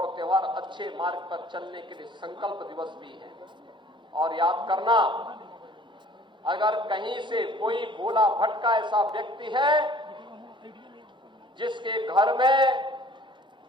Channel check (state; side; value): normal; both; correlation 0.52